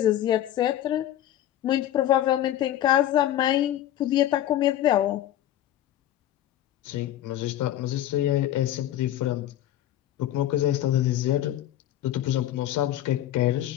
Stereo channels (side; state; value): right; quieter; 12.6 dB